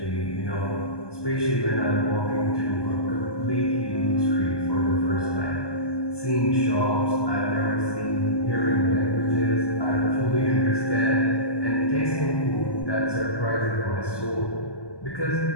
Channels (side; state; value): right; late; 1.2 ms